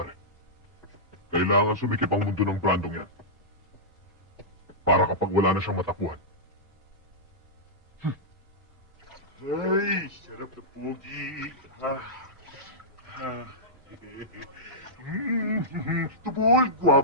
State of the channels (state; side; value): normal; both; correlation -0.13